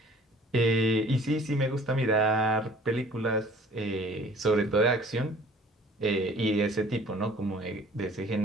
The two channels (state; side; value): normal; both; correlation 0.51